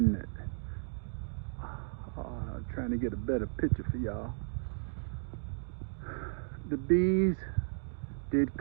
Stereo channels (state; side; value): silent; left; digital silence